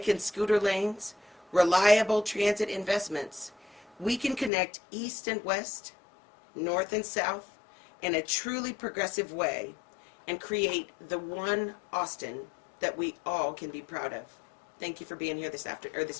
and scooter lanes, reliable transit investments, we can connect east and west, north and south in a truly progressive way and create the one Austin that we all can be proud of. Thank you for being here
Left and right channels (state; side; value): drops out; right; at 4.5 s